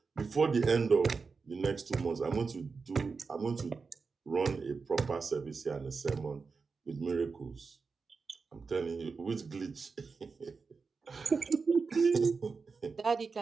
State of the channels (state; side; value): quieter; left; 4.8 dB